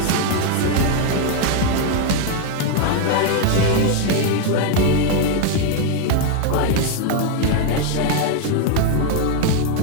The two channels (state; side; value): different; both; correlation 0.00